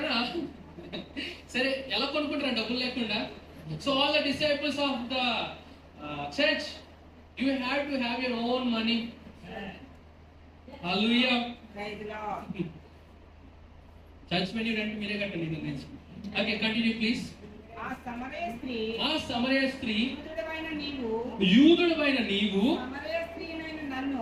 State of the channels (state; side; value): identical; both; correlation 1.00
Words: సరే ఎలా కొనుక్కుంటారు డబ్బులు లేకుండా? So all the disciples of the church, you have to have your own money. Hallelujah. Praise the Lord. Church many rent మీరే కట్టండి దీని నుంచి. Okay, continue please. ఆ సమరయ స్త్రీ యూదుడవైన నీవు